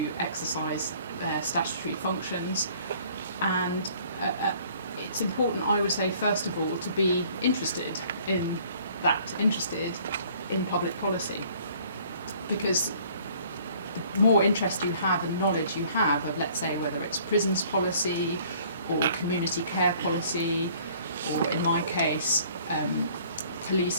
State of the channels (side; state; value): both; inverted; correlation -0.56